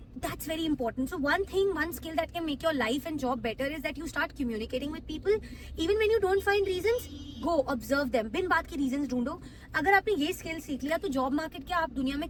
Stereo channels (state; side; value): identical; both; correlation 1.00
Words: that's very important. So one thing, one skill that can make your life and job better is that you start communicating with people even when you don't find reasons. Go observe them, बिन बात के रीजंस ढूंढो. अगर आपने ये स्किल सीख लिया तो जॉब मार्केट क्या, आप दुनिया में